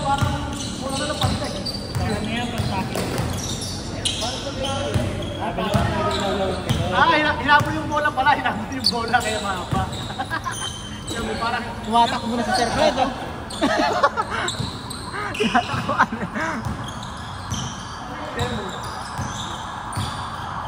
parang mula na ng pantek. Parang yan, pang-tapping. Parang sabi hinabol yung bola pala, hinabol yung bola kaya mahaba. Yung parang Tumatak mo na sa circle line, oh. tinatakbuhan. Temo.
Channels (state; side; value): identical; both; correlation 1.00